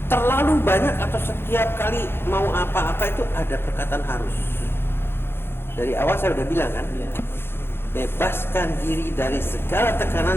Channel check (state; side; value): late; right; 0.11 ms